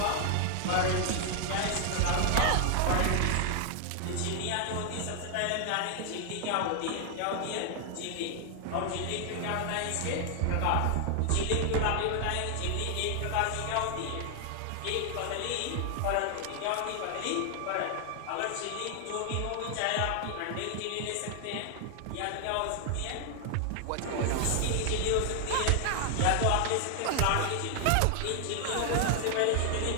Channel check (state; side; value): different; both; correlation 0.00